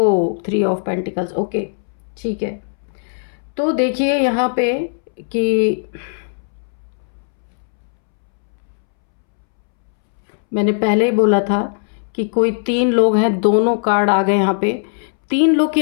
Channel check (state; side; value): silent; right; 66 dB below the other